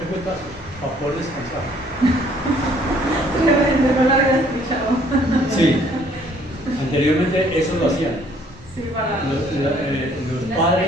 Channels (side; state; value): both; normal; correlation 0.61